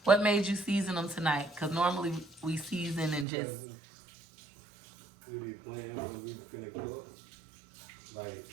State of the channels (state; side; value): drops out; left; at 3.2 s